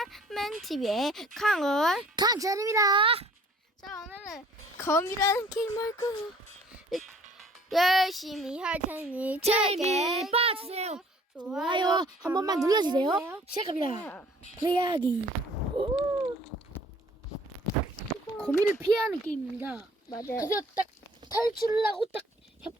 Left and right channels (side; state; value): both; normal; correlation 0.54